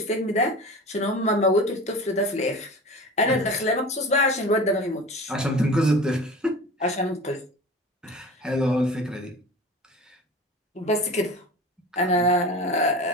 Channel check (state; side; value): normal; both; correlation 0.35